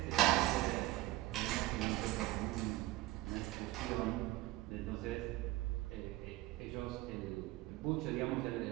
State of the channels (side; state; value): left; quieter; 18.2 dB